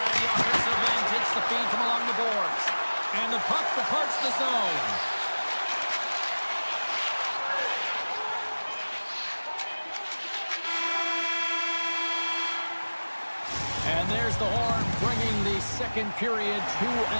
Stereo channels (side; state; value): both; inverted; correlation -1.00